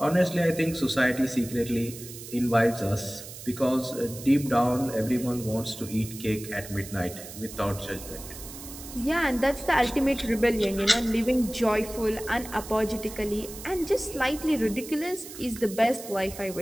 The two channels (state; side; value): noise; right; hiss, 13 dB below the sound